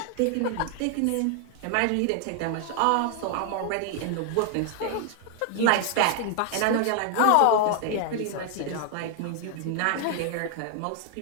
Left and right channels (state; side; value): different; both; correlation 0.00